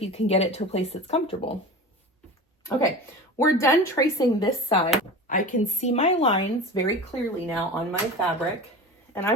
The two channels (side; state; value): both; normal; correlation 0.33